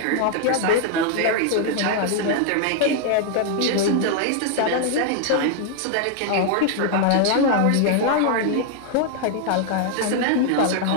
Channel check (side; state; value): both; different; correlation 0.00